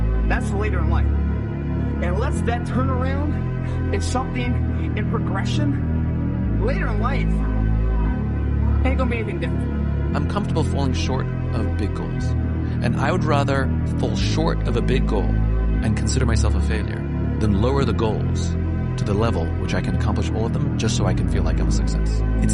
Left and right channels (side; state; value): both; identical; correlation 1.00